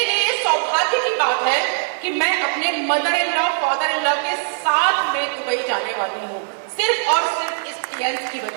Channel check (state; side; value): silent; left; 63 dB below the other